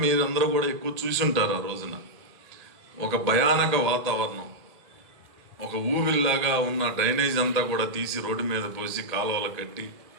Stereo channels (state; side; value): late; left; 1.8 ms